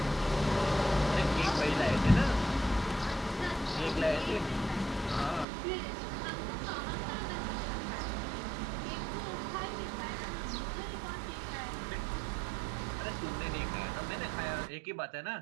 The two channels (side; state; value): left; drops out; at 5.5 s